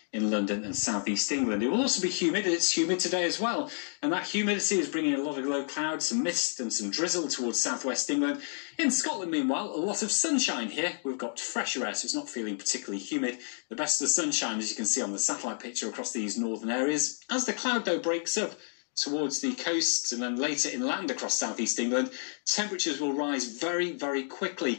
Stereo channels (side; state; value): right; silent; digital silence